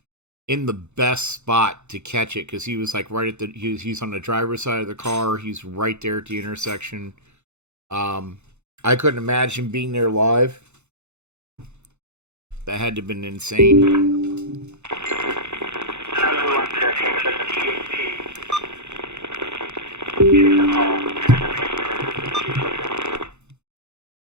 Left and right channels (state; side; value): late; left; 0.82 ms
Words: in the best spot to catch it because he was like right at the he's on the driver's side of the car. He's right there at the intersection. I couldn't imagine being there live. That had to have been insane. I don't know who wants to take a bit of THC. Give a call and then wait for her.